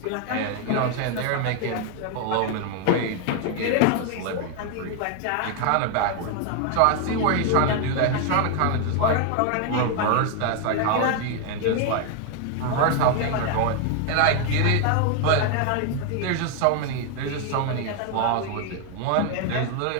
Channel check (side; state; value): both; different; correlation 0.01